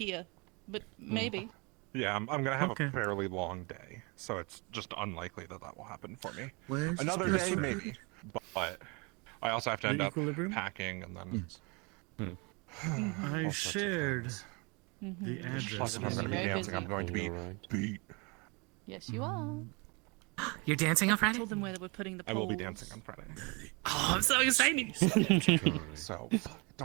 but maybe. Yeah, I'm gonna have Okay. a fairly long day, so it's just unlikely that that will happen for me. Where's Another Space day, Road? maybe, but I also have to The end up Equilibrium? packing and then. Yes. I shared Mm-hmm. the address. Plus, if I'm going to be Very dancing, busy. I'm going to be beat. Yes, you are. You're dancing on I Friday? told them where they were putting the I poles. will be dancing on Friday. Oh, I'm so excited. So,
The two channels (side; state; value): left; quieter; 29.7 dB